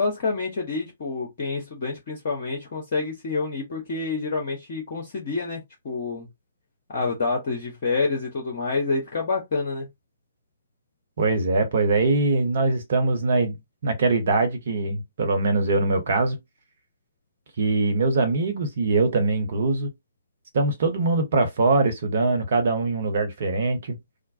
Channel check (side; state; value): both; inverted; correlation -0.65